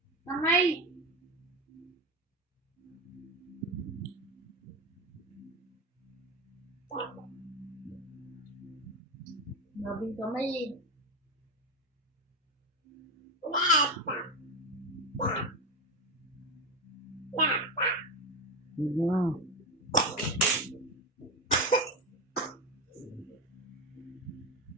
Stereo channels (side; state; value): both; normal; correlation 0.17